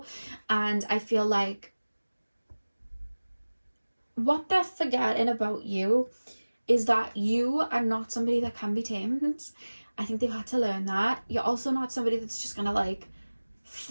And I feel like what they're forgetting about you is that you are not somebody that can be tamed. I think they've had to learn that. You're also not somebody that's just gonna like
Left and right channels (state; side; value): inverted; both; correlation -1.00